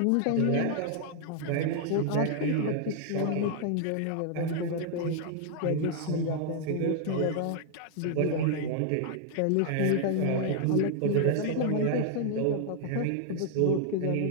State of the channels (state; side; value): different; both; correlation 0.00